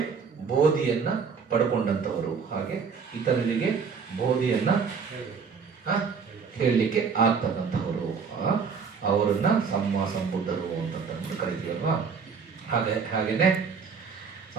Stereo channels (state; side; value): quieter; left; 5.8 dB